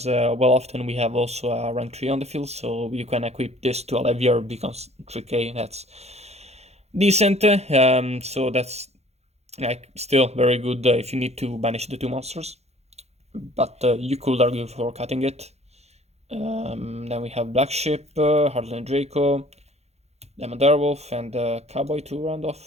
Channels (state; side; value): late; left; 0.31 ms